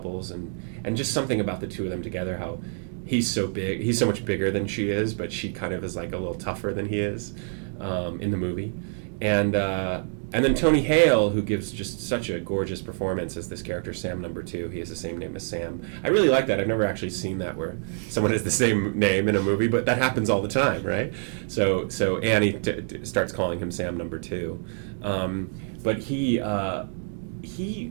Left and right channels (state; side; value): silent; left; 61 dB below the other